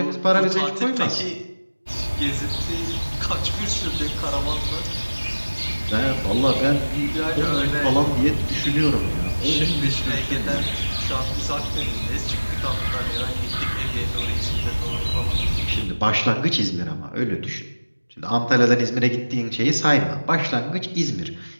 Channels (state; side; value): inverted; both; correlation -1.00